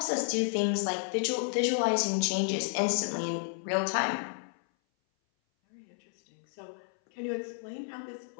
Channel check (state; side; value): silent; right; 57 dB below the other